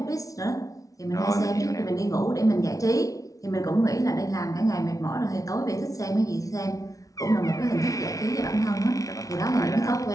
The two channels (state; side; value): late; right; 0.17 ms